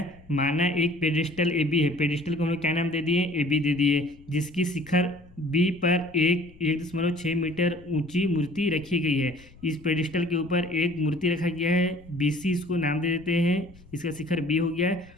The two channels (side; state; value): left; noise; rumble, 24 dB below the sound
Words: माना एक पेडिस्टल ए बी है। पेडिस्टल को हम लोग क्या नाम दे दिए, ए बी दे दिए, जिसकी शिखर बी पर 1.6 मीटर ऊंची मूर्ति रखी गई है। इस पेडिस्टल के ऊपर एक मूर्ति रखा गया है, बी सी इसको नाम दे देते हैं। इसका शिखर बी हो गया है